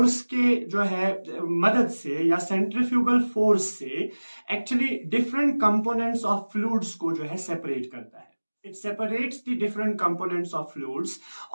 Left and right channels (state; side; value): inverted; both; correlation -1.00